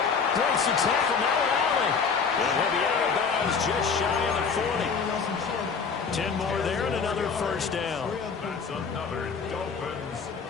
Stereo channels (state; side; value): quieter; right; 5.7 dB